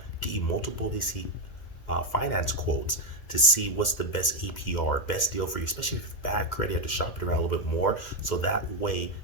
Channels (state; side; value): late; right; 2.1 ms